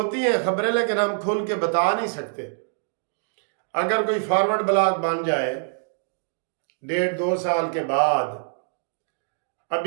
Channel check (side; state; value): left; silent; digital silence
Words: ہیں خبریں، لیکن ہم کھل کے بتا نہیں سکتے۔ اگر کوئی فارورڈ بلاگ بن جائے 1.5-2 سال کے بعد،